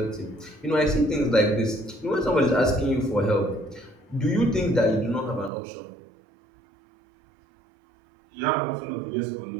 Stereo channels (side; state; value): left; drops out; at 5.5 s